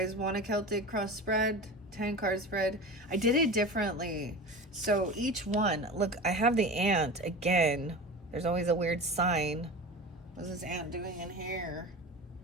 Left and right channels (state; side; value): normal; both; correlation 0.31